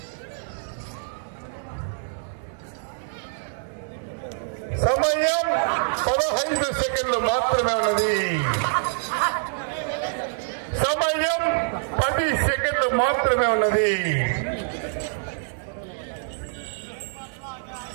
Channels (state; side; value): silent; left; digital silence